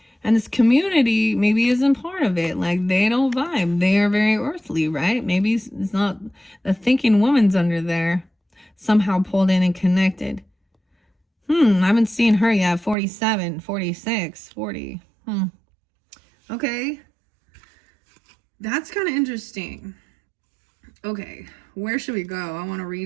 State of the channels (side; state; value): left; drops out; at 13.0 s